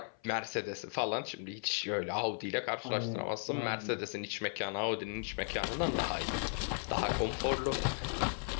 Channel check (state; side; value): silent; right; 54 dB below the other